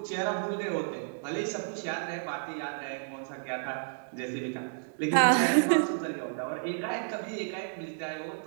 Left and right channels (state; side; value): silent; left; digital silence